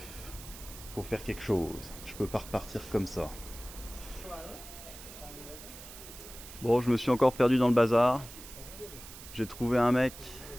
faut faire quelque chose. Je peux pas repartir comme ça. Bon, je me suis encore perdu dans le bazar. J'ai trouvé un mec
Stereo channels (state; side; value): noise; right; hiss, 15 dB below the sound